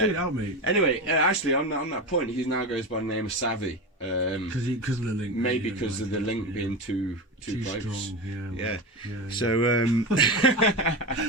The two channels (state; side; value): normal; both; correlation 0.20